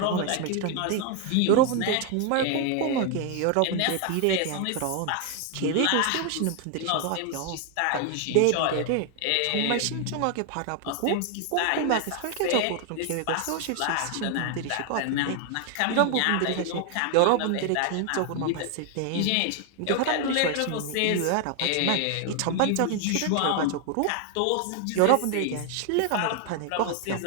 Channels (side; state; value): both; different; correlation 0.00